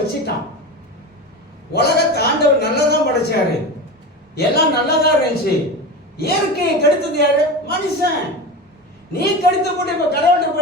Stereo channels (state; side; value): normal; both; correlation 0.26